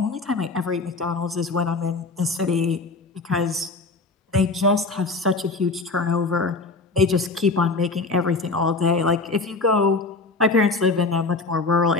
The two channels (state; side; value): quieter; right; 3.7 dB